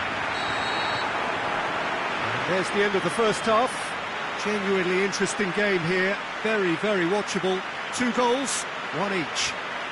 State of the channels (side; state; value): both; identical; correlation 1.00